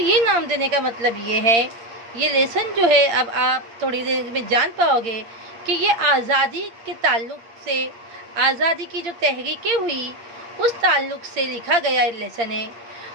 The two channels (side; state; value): left; late; 8.7 ms